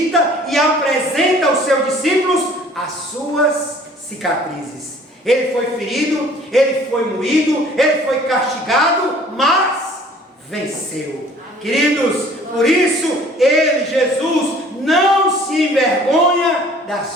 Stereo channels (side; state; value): both; normal; correlation 0.53